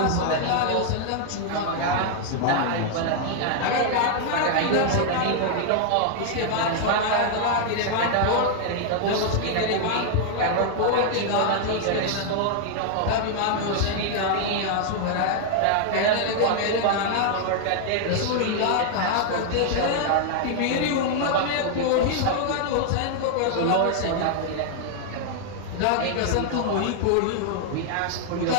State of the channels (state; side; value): different; both; correlation 0.00